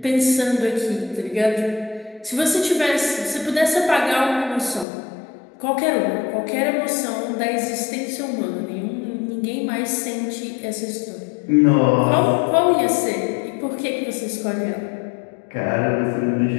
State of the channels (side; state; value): right; drops out; at 4.9 s